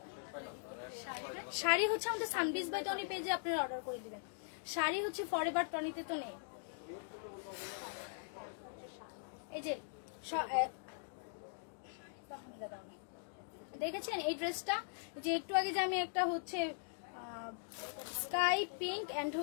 শাড়ি হচ্ছে আমাদের সানবিজ বাই টনি পেজে আপনারা অর্ডার করে দিবেন। শাড়ি হচ্ছে ফরএভার টনিতে তো নেই। এই যে দেখেছেন এই ড্রেসটা, যে একটু আগে যে আমি একটা হচ্ছে স্কাই পিঙ্ক এন্ড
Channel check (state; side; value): silent; right; digital silence